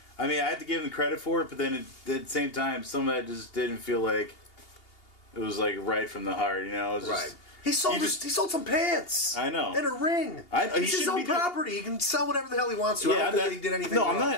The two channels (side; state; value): right; late; 2.8 ms